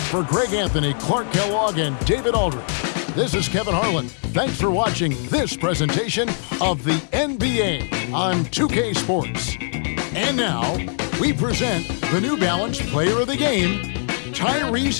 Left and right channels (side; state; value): right; silent; digital silence